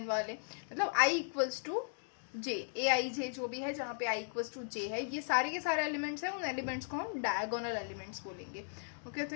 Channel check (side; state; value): right; silent; digital silence